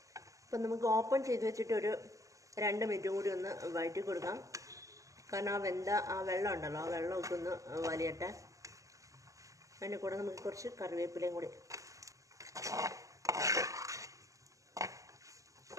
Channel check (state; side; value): late; left; 0.16 ms